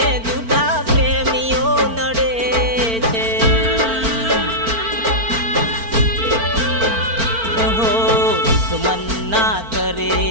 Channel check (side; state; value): left; late; 4.4 ms